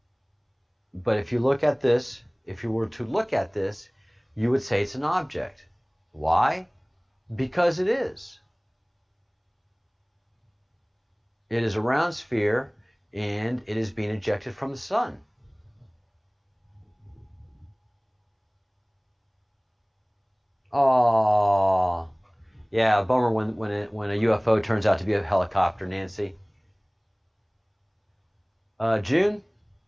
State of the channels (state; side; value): identical; both; correlation 1.00